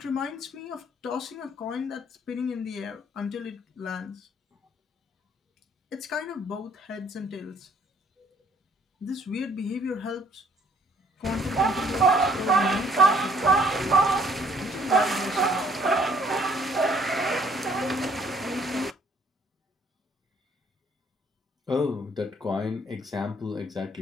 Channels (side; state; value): both; normal; correlation 0.62